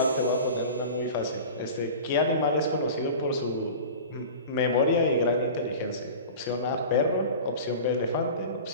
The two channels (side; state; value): both; inverted; correlation -0.36